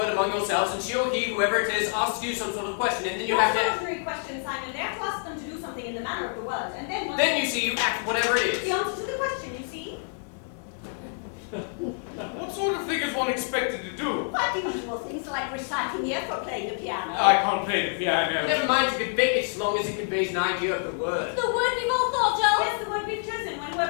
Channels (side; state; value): right; silent; 60 dB below the other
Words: among yourselves, and she or he, whoever it is, asks you some sort of question, and then you have to... Not an ordinary question, Simon. They have to ask them to do something in the manner of the word, and then... Then you see, you act whatever it is. The answer to the question, you see? What sort of thing is one expected to do? Quite the usual things like reciting the F or playing the piano. I can't play the piano. Never mind, you can fake it as long as it conveys an idea of the word. The word we've all thought of. Yes, the word we've chosen when